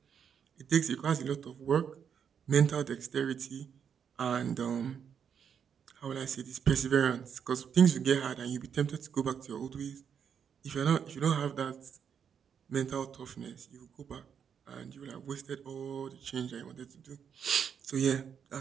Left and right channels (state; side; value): quieter; left; 7.6 dB